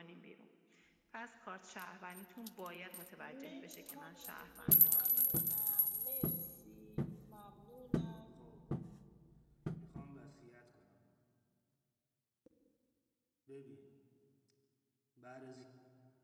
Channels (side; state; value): both; identical; correlation 1.00